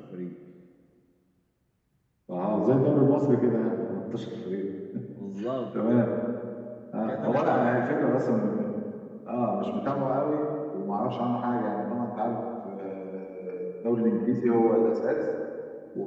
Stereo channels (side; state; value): both; identical; correlation 1.00